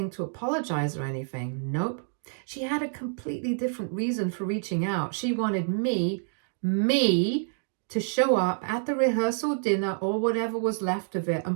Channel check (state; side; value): silent; left; digital silence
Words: to apologize or anything. Nope. She had a completely different reason for reaching out. She wanted me, to show up at the rehearsal dinner or whatever was left of it